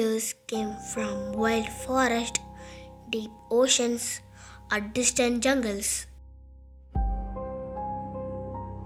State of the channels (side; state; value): both; identical; correlation 1.00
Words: came from wild forests, deep oceans, or distant jungles.